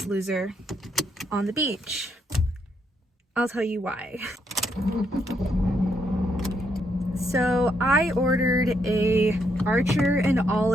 loser on the beach. I'll tell you why. So I ordered a Archer and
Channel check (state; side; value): normal; both; correlation 0.76